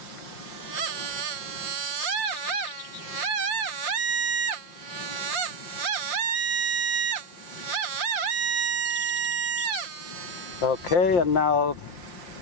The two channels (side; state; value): right; late; 5.8 ms